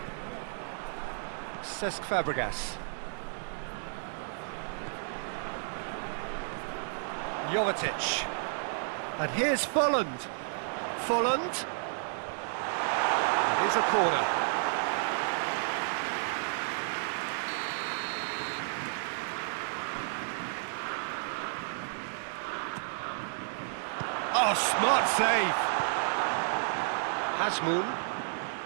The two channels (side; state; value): left; silent; digital silence